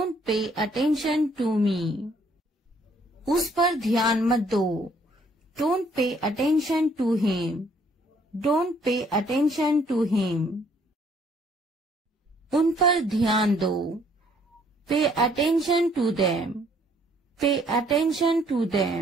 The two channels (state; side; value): normal; both; correlation 0.64